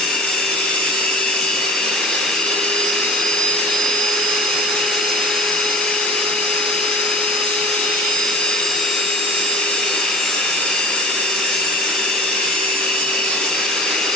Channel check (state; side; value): normal; both; correlation 0.37